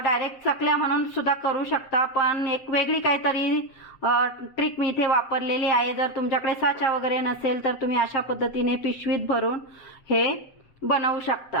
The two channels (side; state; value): right; late; 7.6 ms